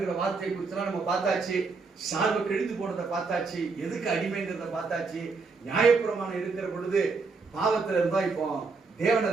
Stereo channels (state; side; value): quieter; left; 4.4 dB